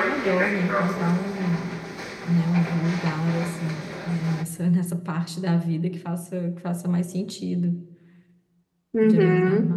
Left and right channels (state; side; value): identical; both; correlation 1.00